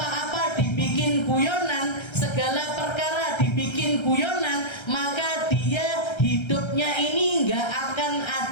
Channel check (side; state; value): right; late; 1.3 ms